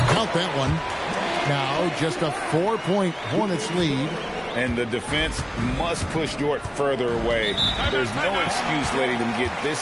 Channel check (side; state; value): both; identical; correlation 1.00